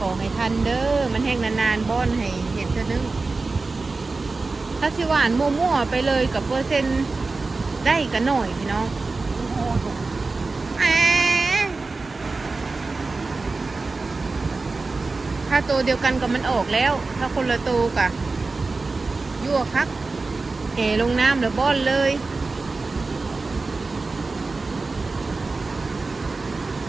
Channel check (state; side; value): quieter; left; 3.7 dB